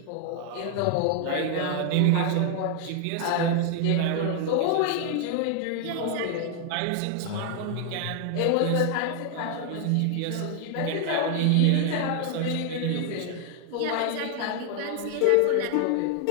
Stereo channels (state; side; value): different; both; correlation 0.00